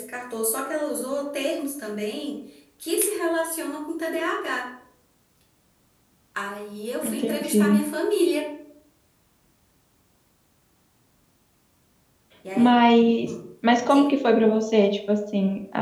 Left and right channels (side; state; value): both; identical; correlation 1.00